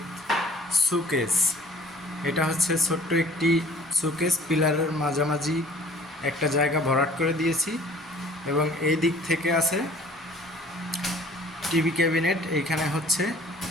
সুকেস। এটা হচ্ছে ছোট্ট একটি সুকেস, পিলারের মাঝামাঝি একটা জায়গা ভরাট করে দিয়েছি এবং এই দিক থেকে আছে টিভি ক্যাবিনেট। এইখানে হচ্ছে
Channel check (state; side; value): normal; both; correlation 0.51